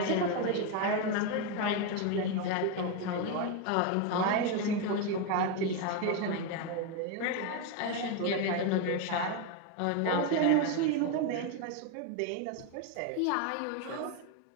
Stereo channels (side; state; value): both; different; correlation 0.02